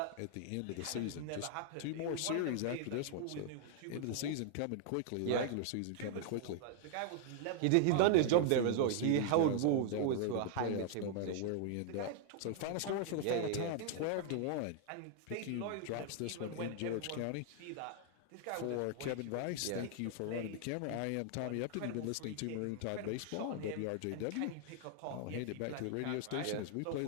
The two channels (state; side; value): different; both; correlation 0.00